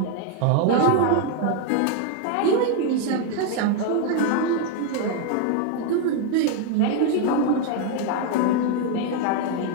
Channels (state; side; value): different; both; correlation 0.00